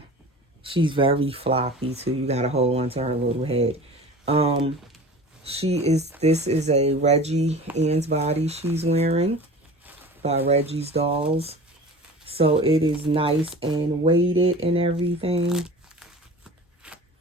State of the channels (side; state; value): both; normal; correlation 0.38